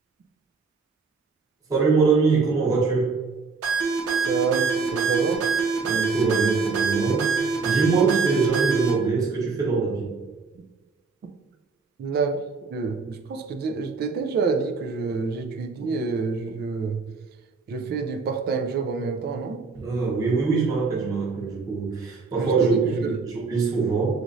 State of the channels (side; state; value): left; quieter; 4.4 dB